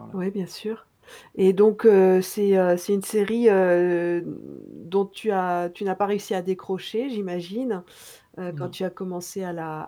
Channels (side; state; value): both; identical; correlation 1.00